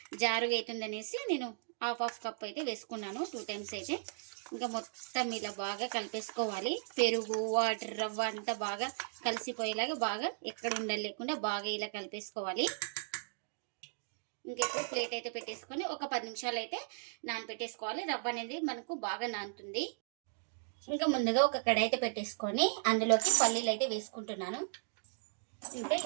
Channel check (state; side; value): silent; left; digital silence